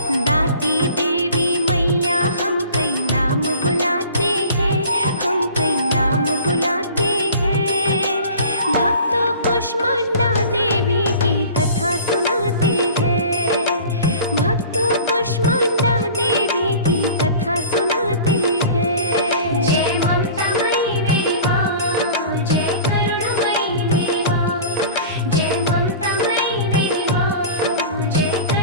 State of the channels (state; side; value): inverted; both; correlation -0.42